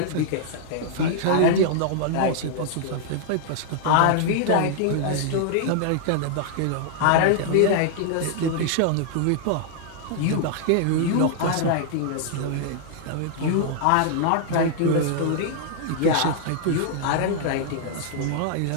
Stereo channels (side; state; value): both; different; correlation -0.01